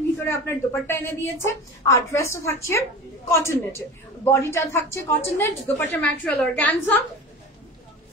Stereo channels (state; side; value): normal; both; correlation 0.34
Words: ভিতরে আপনার দোপাট্টা এনে দিয়েছে। আর ড্রেসটা থাকছে কটন নেটের, বডিটা থাকছে কটন নেট, দোপাট্টার ম্যাটেরিয়াল অর্গানজা,